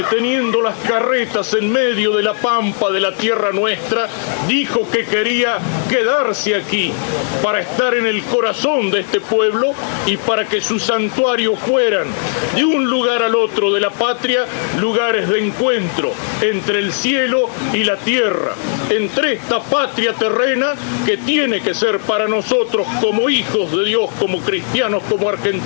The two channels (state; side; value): silent; right; 60 dB below the other